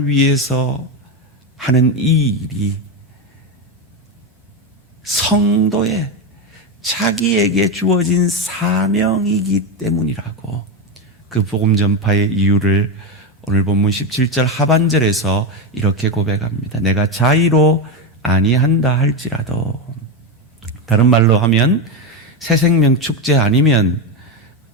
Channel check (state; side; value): normal; both; correlation 0.11